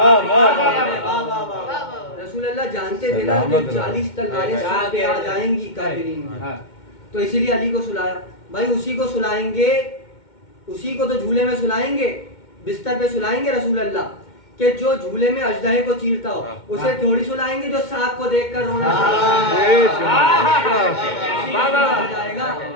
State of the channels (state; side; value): late; right; 2.2 ms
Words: رسول اللہ جانتے تھے نا کہ 40 تلواریں سر پہ آ جائیں گی کافرین کی. تو اسی لیے علی کو سلایا. بھائی اسی کو سلائیں گے، اسی کو تو جھولے میں سلائیں گے، بستر پہ سلائیں گے رسول اللہ کہ جو جھولے میں اژدہے کو چیرتا ہو. اسے تھوڑی سلائیں گے جو سانپ کو دیکھ کر رونا جائے گا